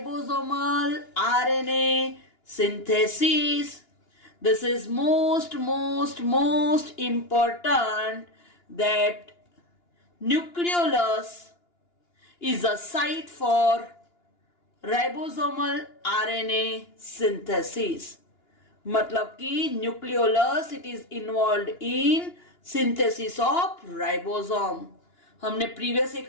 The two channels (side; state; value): right; late; 2.9 ms